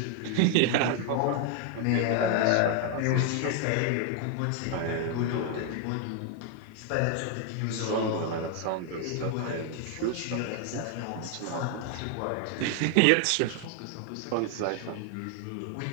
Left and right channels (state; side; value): different; both; correlation 0.00